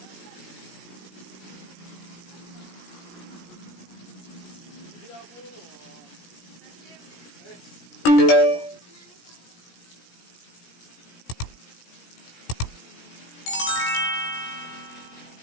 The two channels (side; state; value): right; late; 17 ms